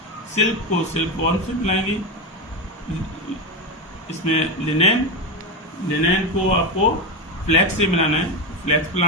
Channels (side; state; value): both; normal; correlation 0.15